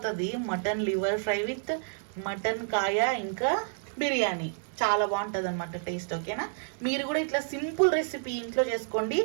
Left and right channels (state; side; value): silent; left; digital silence